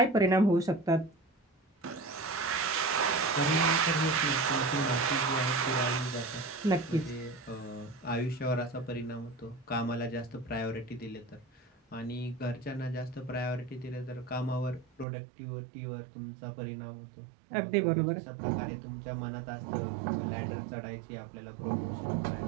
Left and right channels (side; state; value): left; drops out; at 15.1 s